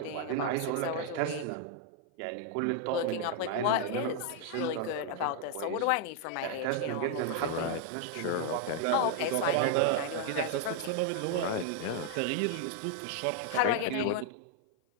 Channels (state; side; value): different; both; correlation 0.00